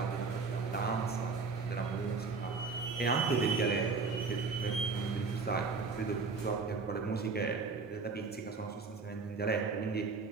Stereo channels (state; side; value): quieter; left; 4.4 dB